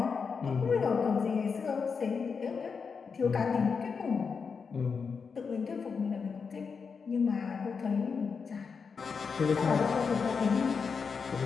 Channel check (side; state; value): right; quieter; 5.6 dB